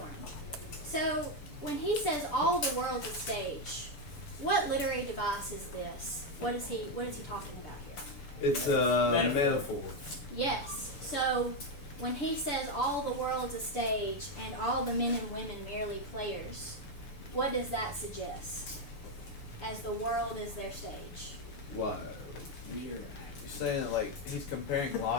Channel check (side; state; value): right; late; 6.9 ms